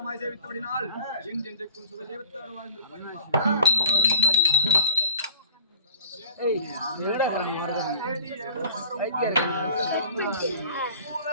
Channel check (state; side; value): inverted; both; correlation -0.46